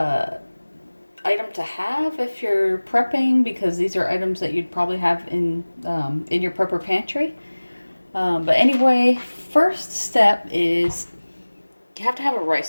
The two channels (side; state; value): both; inverted; correlation -1.00